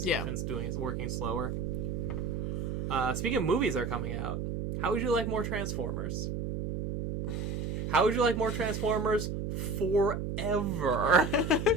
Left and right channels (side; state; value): right; noise; hum, 3 dB below the sound